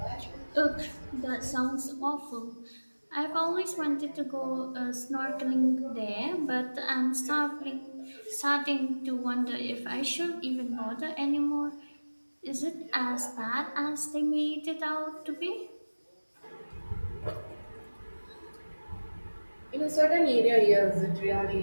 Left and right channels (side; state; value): both; inverted; correlation -1.00